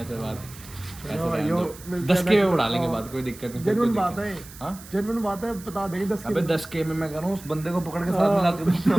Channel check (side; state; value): right; noise; hiss, 18 dB below the sound